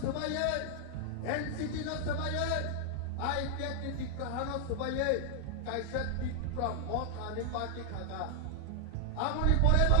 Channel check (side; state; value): both; different; correlation 0.00